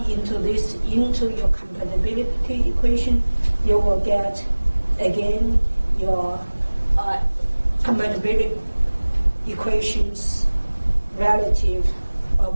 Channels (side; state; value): both; inverted; correlation -1.00